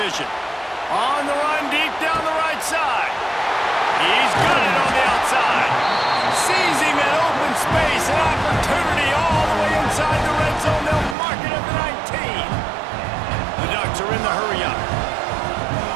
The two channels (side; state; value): left; drops out; at 11.2 s